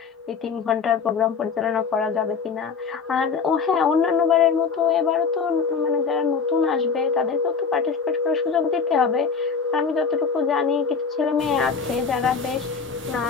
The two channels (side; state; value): right; quieter; 5.6 dB